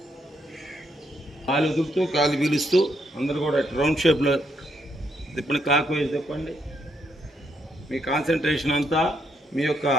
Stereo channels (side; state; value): both; normal; correlation 0.76